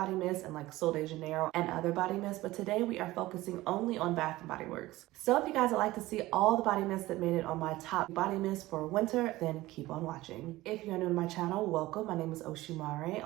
mist and like Sol de Janeiro and other body mists, but today we are focusing only on Bath & Body Works. So if you guys would like to see all the body mists that made it on my top body mists for winter, then keep on watching. If you're new to my channel, welcome. My name is Oshimare.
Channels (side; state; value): left; quieter; 17.9 dB